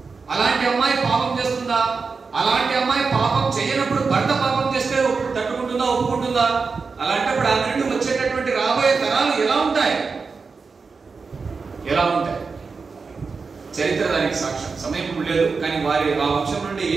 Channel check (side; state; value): left; quieter; 4.8 dB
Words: అలాంటి అమ్మాయి పాపం చేస్తుందా, అలాంటి అమ్మాయి పాపం చేయనప్పుడు భర్త పాపం చేస్తే తట్టుకుంటుందా, ఒప్పుకుంటుందా? అలాంటప్పుడు ఆ నుండి వచ్చేటటువంటి రాబోయే తరాలు ఎలా ఉంటాయి, ఎలా ఉంటాయి? చరిత్ర దానికి సాక్ష్యం. సమయం ఇప్పుడు లేదు, కానీ వారి ఆ వంశం నుండి